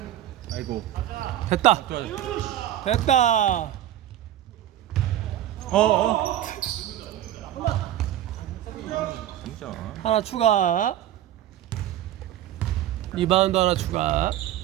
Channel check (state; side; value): quieter; left; 12.6 dB